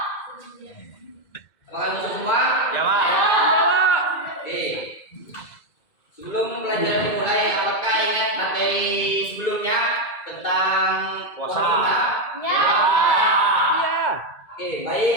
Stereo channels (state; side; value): late; right; 2.2 ms